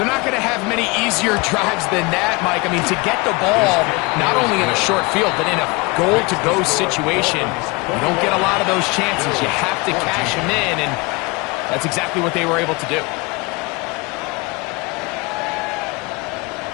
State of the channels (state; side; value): quieter; right; 26.1 dB